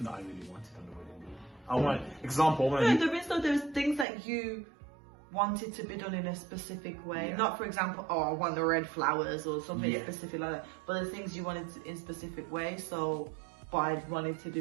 that I really wanted on the wedding day. I want there's things that you wanted to be done in a specific way. Not, for example, I want the red flowers or something specific like that. But there's things you wanted in specific way. So, but I wanted to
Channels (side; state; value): left; drops out; at 4.0 s